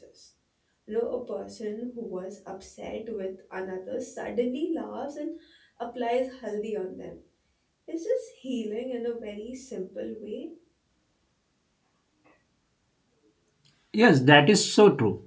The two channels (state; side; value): identical; both; correlation 1.00